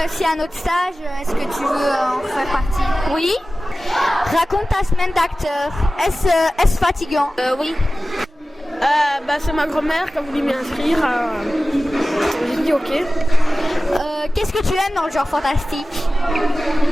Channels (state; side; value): normal; both; correlation 0.96